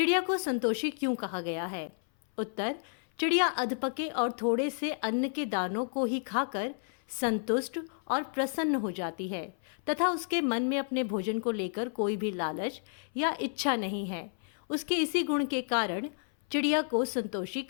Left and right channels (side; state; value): right; silent; 57 dB below the other